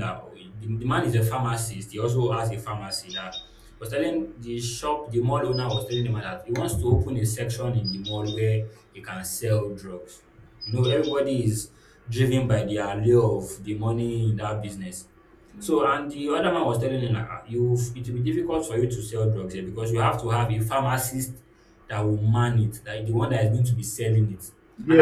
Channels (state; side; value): identical; both; correlation 1.00